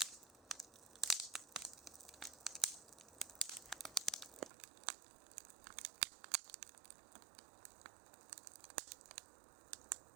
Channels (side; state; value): left; drops out; at 4.5 s